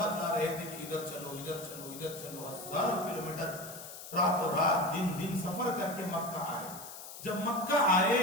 رہے تھے کہ ادھر چلو ادھر چلو ادھر چلو. ہزاروں کلومیٹر راتوں رات دن دن سفر کر کے مکہ آئے. جب مکہ آئے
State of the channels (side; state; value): left; noise; hiss, 12 dB below the sound